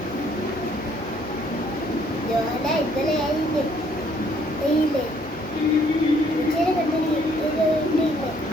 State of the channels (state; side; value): normal; both; correlation 0.64